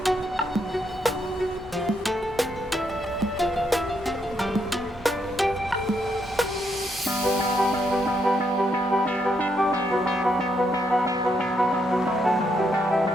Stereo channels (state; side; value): normal; both; correlation 0.77